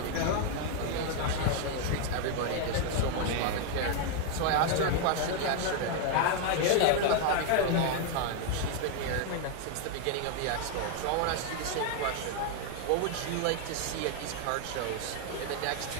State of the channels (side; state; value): both; different; correlation 0.00